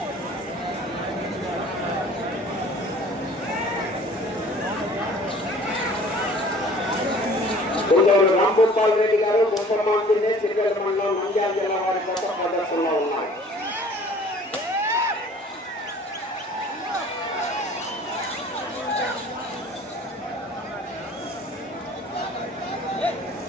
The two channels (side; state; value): both; normal; correlation 0.50